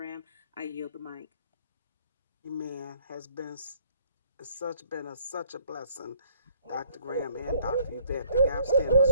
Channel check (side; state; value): both; inverted; correlation -0.62